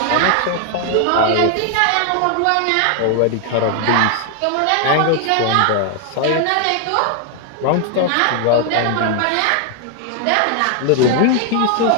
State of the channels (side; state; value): both; different; correlation 0.00